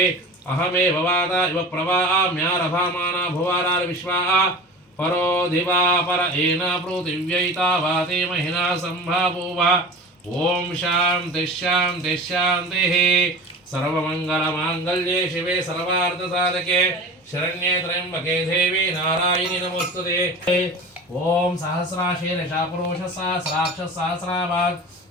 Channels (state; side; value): normal; both; correlation 0.34